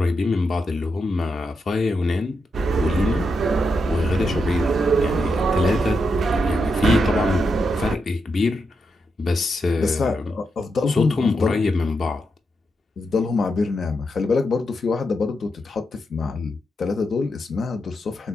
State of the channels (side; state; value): both; normal; correlation 0.84